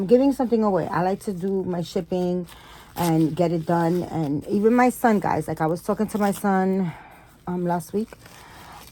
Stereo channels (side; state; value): both; identical; correlation 1.00